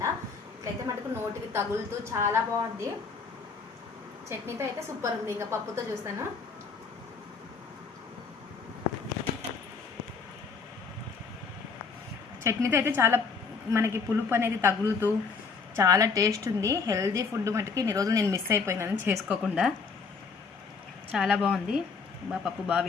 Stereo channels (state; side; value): quieter; right; 5.0 dB